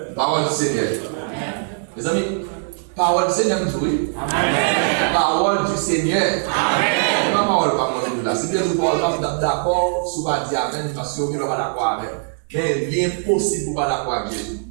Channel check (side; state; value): left; silent; digital silence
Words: Parole du Seigneur. Amen. Mes amis, parole du Seigneur, oui. Amen. Parole du Seigneur. Amen. Ma parole pas moi là. Si bien vous parlez d'accord, si vous pas dire amen parce que vous n'êtes pas d'accord avec. Mais il est impossible pour pas d'accord avec Jésus.